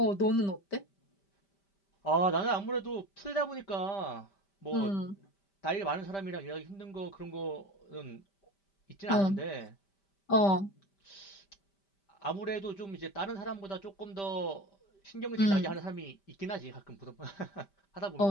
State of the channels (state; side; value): late; right; 5.1 ms